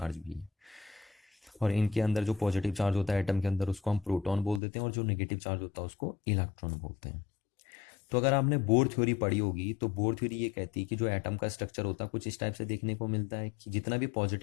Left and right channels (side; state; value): right; drops out; at 4.6 s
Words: भी है। और इनके अंदर जो पॉजिटिव चार्ज होता है एटम के अंदर उसको हम प्रोटॉन बोल देते हैं, और जो नेगेटिव चार्ज होता है उसको इलेक्ट्रॉन बोलते हैं। तो अगर आपने बोर थ्योरी पढ़ी होगी तो बोर थ्योरी ये कहती है कि जो एटम का स्ट्रक्चर होता है कुछ इस टाइप से देखने को मिलता है कि जितना भी